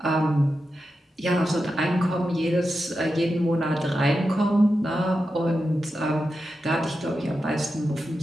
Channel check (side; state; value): both; normal; correlation 0.90